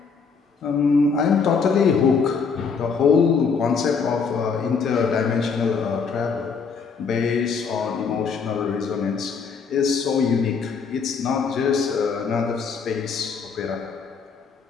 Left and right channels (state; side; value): quieter; right; 5.6 dB